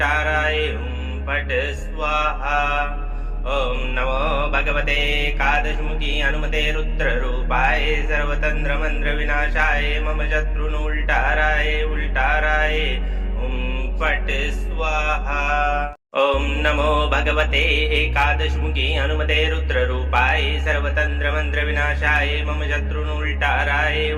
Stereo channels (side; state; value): both; identical; correlation 1.00